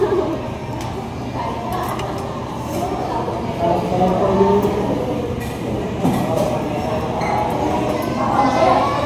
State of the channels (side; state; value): both; identical; correlation 1.00